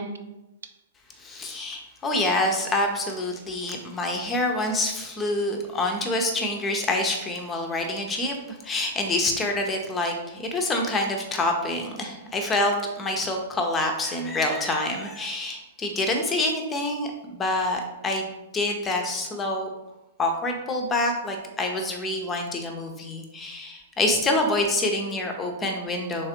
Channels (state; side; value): normal; both; correlation 0.17